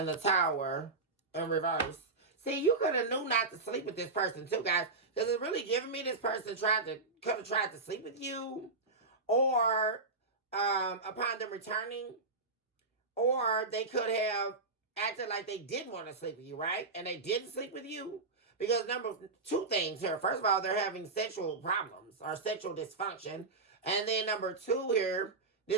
the Tower in reverse. See, you could have knew not to sleep with this person too, guys. Because it's really giving me this person could have tried to sleep with you. Or upon them returning. Or they could have acted like they did want to sleep with you, right? And they didn't sleep with you. Because two things here. First of all, they're having sexual problems or sexual dysfunction. And then number two here,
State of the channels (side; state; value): left; quieter; 3.7 dB